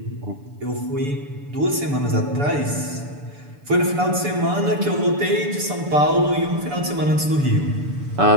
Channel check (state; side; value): late; left; 6.9 ms